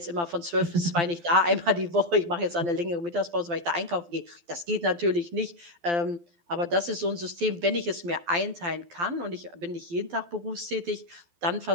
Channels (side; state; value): left; late; 12 ms